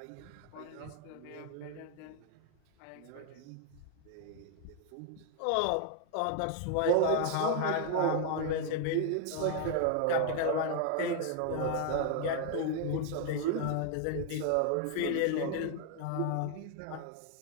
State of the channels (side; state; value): both; different; correlation 0.00